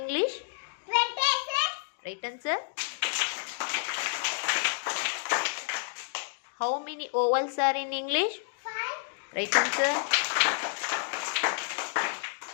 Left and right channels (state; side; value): silent; right; digital silence